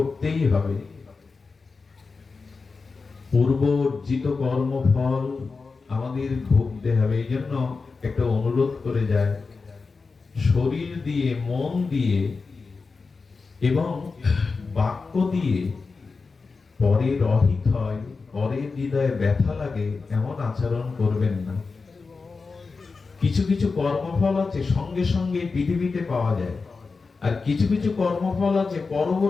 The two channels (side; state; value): right; quieter; 4.4 dB